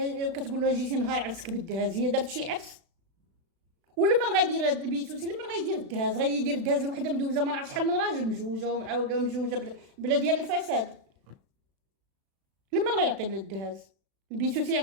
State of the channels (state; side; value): late; left; 36 ms